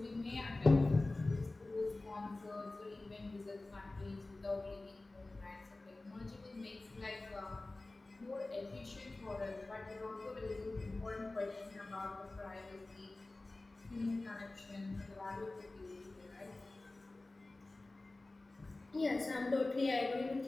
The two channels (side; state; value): right; quieter; 3.0 dB